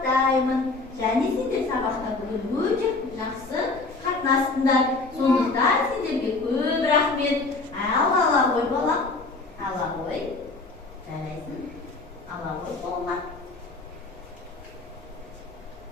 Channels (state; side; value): quieter; right; 3.6 dB